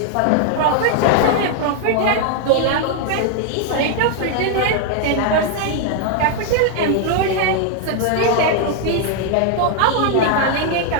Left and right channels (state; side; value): different; both; correlation 0.00